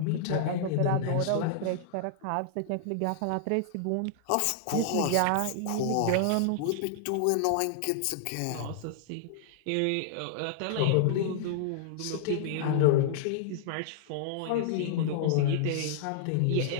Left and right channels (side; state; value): both; different; correlation -0.01